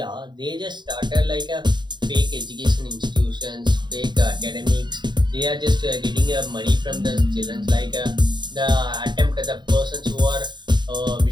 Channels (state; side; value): late; left; 0.22 ms